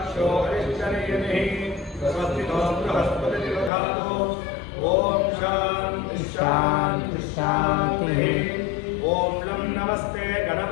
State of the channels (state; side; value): drops out; right; at 3.7 s